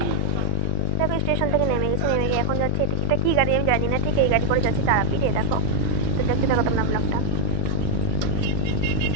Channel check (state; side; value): different; both; correlation 0.00